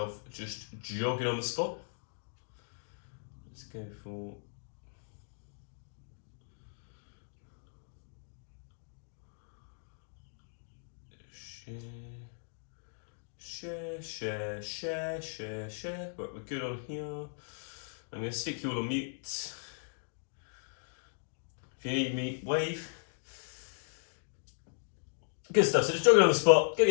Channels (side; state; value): right; silent; digital silence